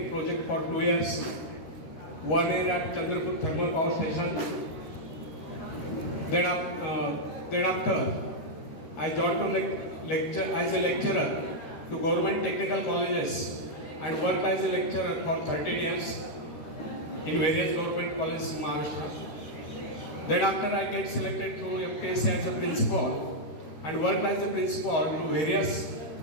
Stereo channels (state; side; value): late; right; 13 ms